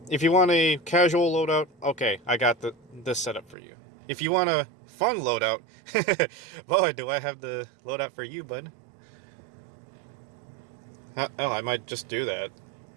If you want a casual loadout, okay, I got this setup for you. If you want a fun loadout, boy, do I have the loadout for you, bud. Hell, I might just do that.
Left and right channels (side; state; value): left; drops out; at 3.6 s